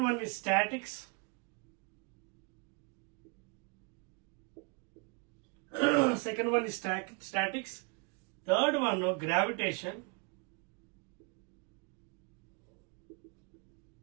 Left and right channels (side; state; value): left; quieter; 32.9 dB